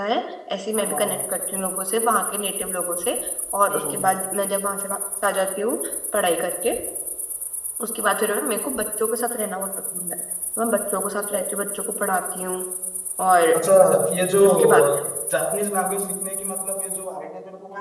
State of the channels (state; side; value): identical; both; correlation 1.00